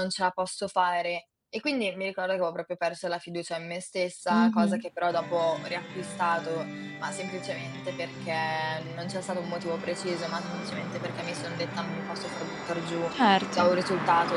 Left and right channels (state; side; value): identical; both; correlation 1.00